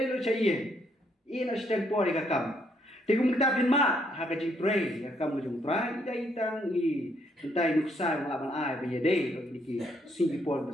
lu cahaya, ini nasi tempo di kakam, tikum kita pinmat, hak kaji tre, kakam ujung tre, ida itang i, entai nuksa melawan ai, bejade, kalau diki Singapore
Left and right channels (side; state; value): both; normal; correlation 0.71